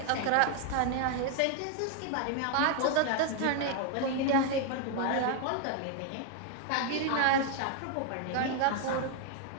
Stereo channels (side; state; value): both; different; correlation 0.00